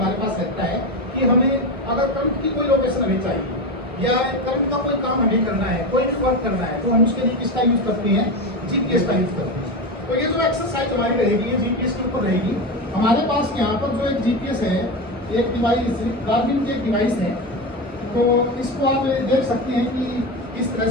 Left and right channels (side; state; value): both; normal; correlation 0.19